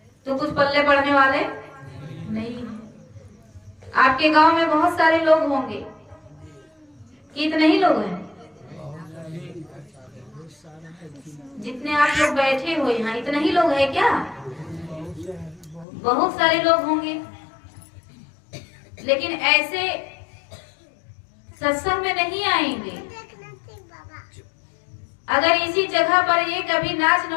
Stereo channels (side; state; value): right; drops out; at 15.9 s